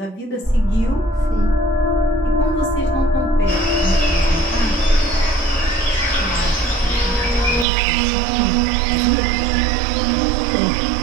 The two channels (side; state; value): left; drops out; at 7.7 s